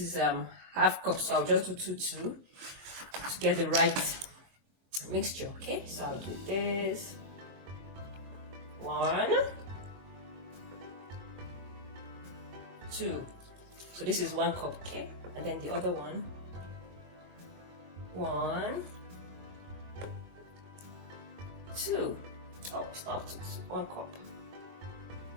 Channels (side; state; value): left; late; 22 ms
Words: half cup. So I'll just do 2 to get the right mixture. Okay, so I'll do this. 1, 2. So this is 1 cup. Okay, and then the other one. 1, 2. Oh, it's not 2, it's 1 cup.